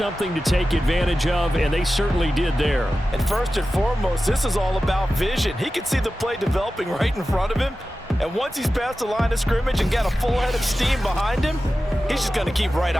to take advantage of, and they certainly did there. And first and foremost, this is all about vision. He can see the play developing right in front of him, and once he's past the line of scrimmage and got a full head of steam behind him, he's just going to keep right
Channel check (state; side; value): normal; both; correlation 0.94